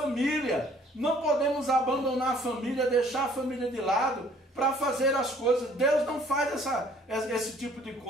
Não podemos abandonar a família, deixar a família de lado para fazer as coisas. Deus não faz esse tipo de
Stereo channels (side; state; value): both; normal; correlation 0.58